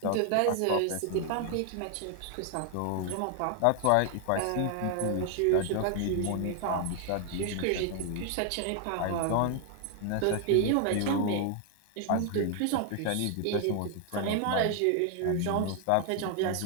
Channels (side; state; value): both; different; correlation 0.00